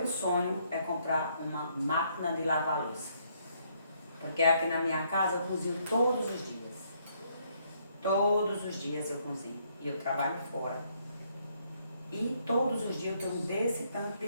sonho é comprar uma máquina de lavar louça. Porque aqui na minha casa eu cozinho todos os dias. Todos os dias eu cozinho. E eu trabalho fora. E todos os dias eu tenho desse tanto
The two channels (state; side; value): inverted; both; correlation -0.71